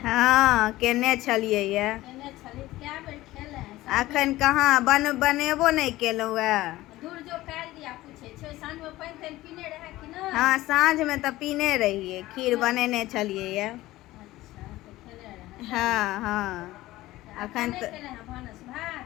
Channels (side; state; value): right; quieter; 17.1 dB